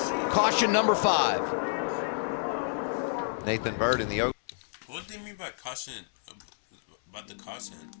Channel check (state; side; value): silent; right; 58 dB below the other